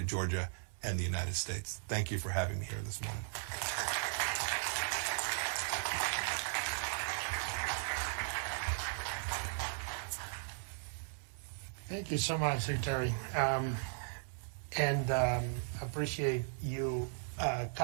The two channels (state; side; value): silent; left; digital silence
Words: Georgia and the United States. Thank you for having me here this morning. Thank you so much, Secretary. And appreciate you